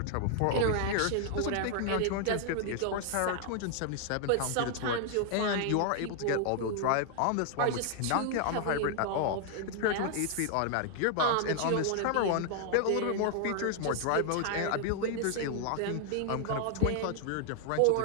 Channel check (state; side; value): different; both; correlation 0.00